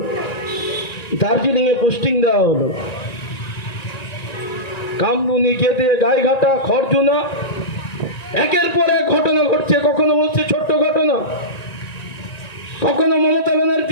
দার্জিলিং এ পোস্টিং দেওয়া হলো। কামদুনি, গেদে, গাইঘাটা, খড়জুনা, একের পর এক ঘটনা ঘটছে। কখনো বলছে ছোট্ট ঘটনা, কখনো মমতা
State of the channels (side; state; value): right; late; 1.9 ms